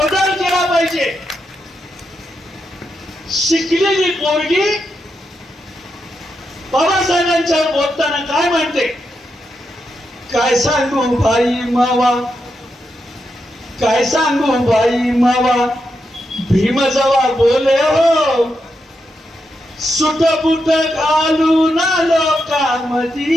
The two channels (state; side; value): normal; both; correlation 0.84